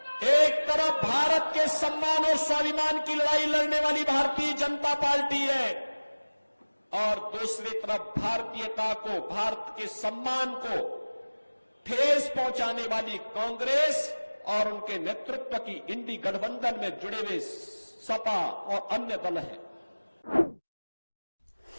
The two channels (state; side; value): inverted; both; correlation -1.00